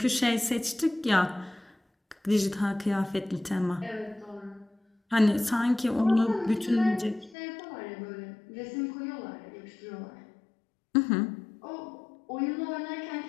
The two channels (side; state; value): right; drops out; at 7.4 s